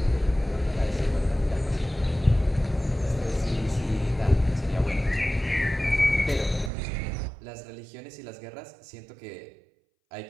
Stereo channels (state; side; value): drops out; left; at 6.7 s